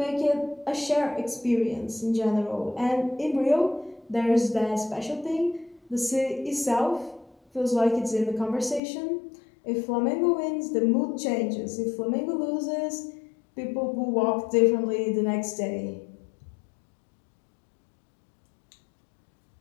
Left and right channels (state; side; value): drops out; right; at 8.8 s